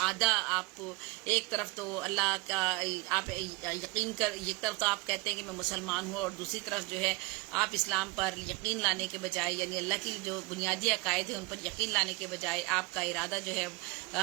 آدھا آپ ایک طرف تو اللہ کا آپ یقین کر، ایک طرف تو آپ کہتے ہیں کہ میں مسلمان ہوں اور دوسری طرف جو ہے آپ اسلام پر یقین لانے کے بجائے، یعنی اللہ کی جو بنیادی عقائد ہیں ان پر یقین لانے کے بجائے آپ کا ارادہ جو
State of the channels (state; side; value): quieter; left; 25.6 dB